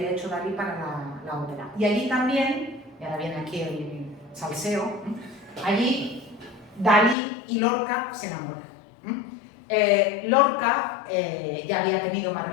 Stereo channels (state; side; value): drops out; right; at 7.2 s